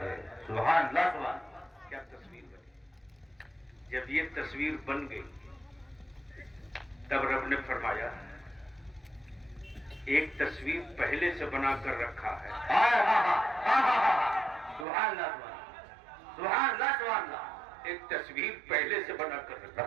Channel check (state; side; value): drops out; left; at 14.9 s